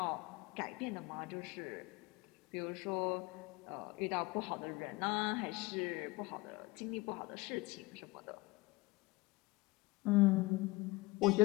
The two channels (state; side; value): quieter; right; 22.8 dB